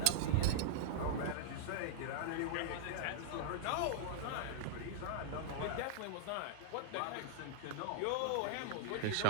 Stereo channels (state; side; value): different; both; correlation -0.01